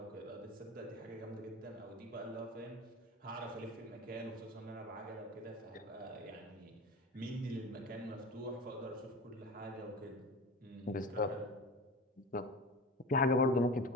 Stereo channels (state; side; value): normal; both; correlation 0.32